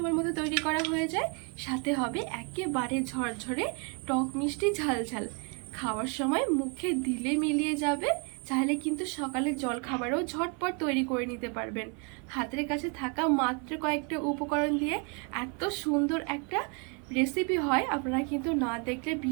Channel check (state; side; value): quieter; left; 35.7 dB